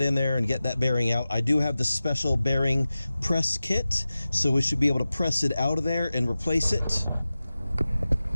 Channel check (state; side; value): inverted; both; correlation -0.95